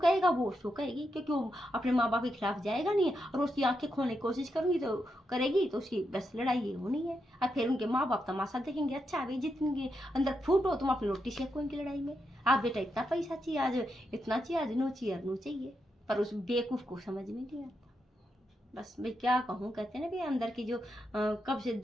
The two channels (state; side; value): normal; both; correlation 0.84